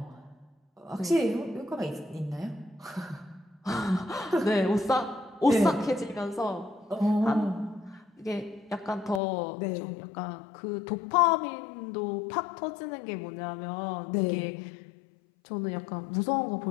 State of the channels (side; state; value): right; drops out; at 9.2 s